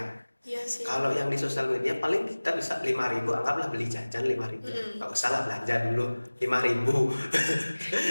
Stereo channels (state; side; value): inverted; both; correlation -1.00